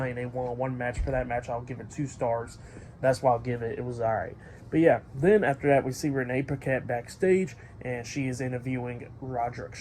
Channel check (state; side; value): identical; both; correlation 1.00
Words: in a 1-on-1 match. For that match, I'll give it 2 stars. That's why I'll give it. It was alright. But yeah, then after that, we see Renee Paquette backstage, and she is interviewing Roderick